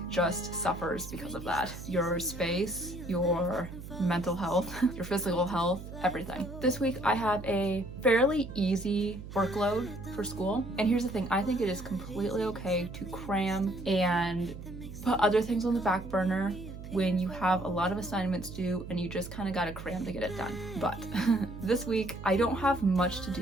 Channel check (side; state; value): right; noise; hum, 12 dB below the sound